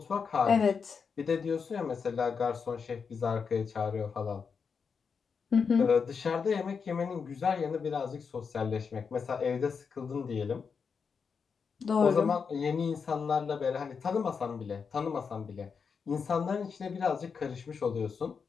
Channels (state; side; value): quieter; right; 5.8 dB